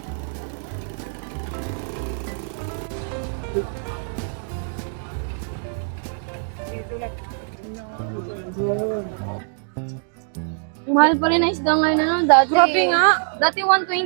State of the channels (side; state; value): left; silent; digital silence